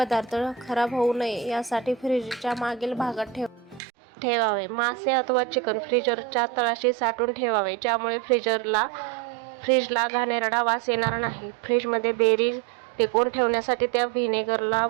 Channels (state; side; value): drops out; left; at 3.8 s